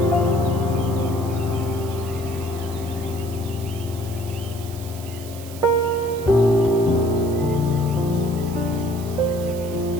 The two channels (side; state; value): right; noise; hiss, 16 dB below the sound